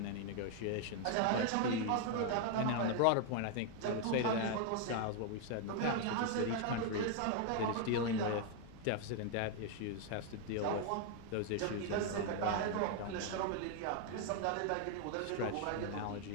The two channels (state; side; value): different; both; correlation 0.00